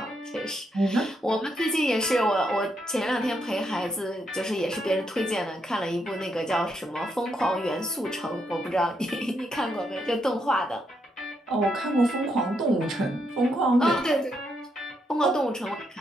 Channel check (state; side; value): normal; both; correlation 0.78